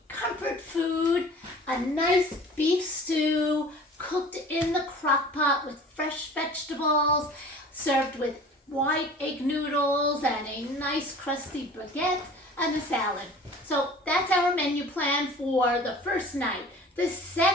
comfort food, a nice beef stew cooked in the crock pot with fresh vegetables, served with white egg noodles and a nice crusty baguette and a salad. So that's our menu plan for the first night. The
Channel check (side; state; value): both; normal; correlation 0.44